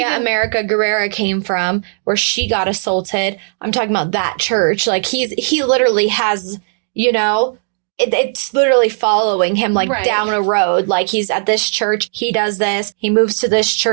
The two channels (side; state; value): left; silent; digital silence